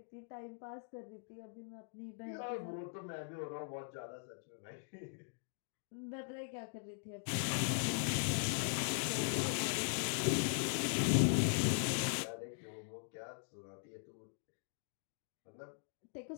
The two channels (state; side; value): silent; right; digital silence